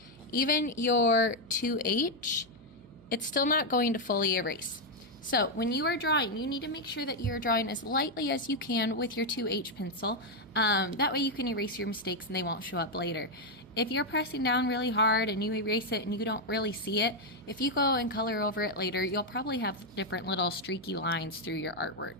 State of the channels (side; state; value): right; noise; hum, 23 dB below the sound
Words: even your 2H, it's still not going to fully erase. So when you are drawing, you need to make sure that you're drawing as lightly as you can with your 2H pencil. That way you can erase your mistakes and they won't show up later. If you're pressing down really hard and you erase it and you don't really see it, if you go and color over it later, you'll probably have different little streaky lines through your